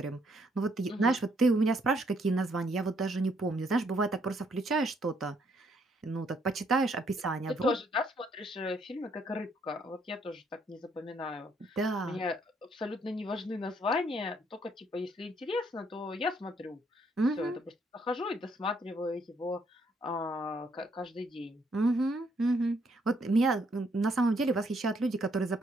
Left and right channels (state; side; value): normal; both; correlation 0.70